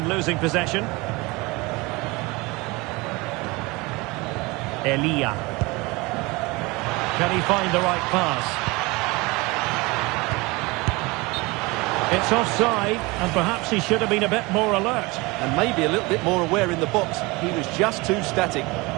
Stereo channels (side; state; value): left; quieter; 24.1 dB